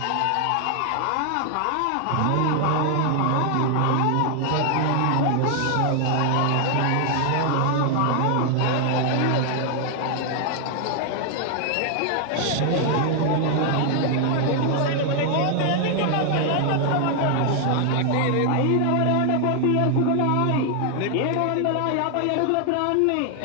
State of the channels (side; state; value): both; different; correlation 0.00